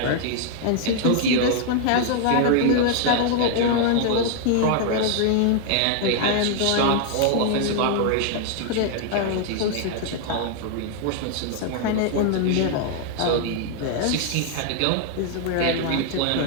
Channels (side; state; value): both; different; correlation 0.00